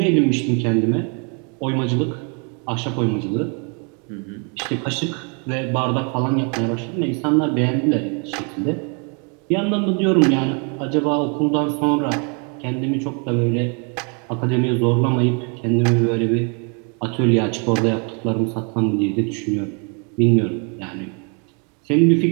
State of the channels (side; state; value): left; quieter; 36.6 dB